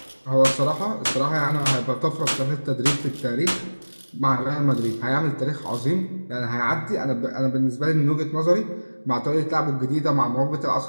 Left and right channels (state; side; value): inverted; both; correlation -1.00